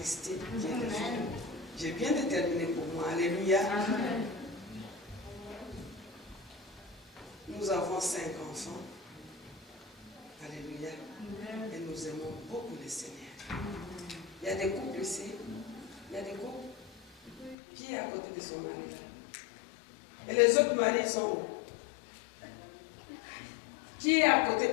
J'ai bien déterminé pour moi. Alléluia. Amen. Nous avons 5 enfants. Alléluia. Amen. Et nous aimons beaucoup le Seigneur. Il y y a des couples ici. Il y a des couples. Qui est à côté de son mari là? Et les autres maris sont où? Qui est à côté?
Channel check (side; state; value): right; drops out; at 17.6 s